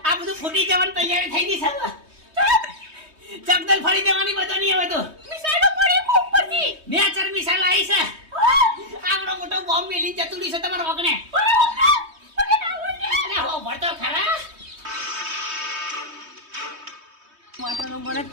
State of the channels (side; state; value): left; late; 3.2 ms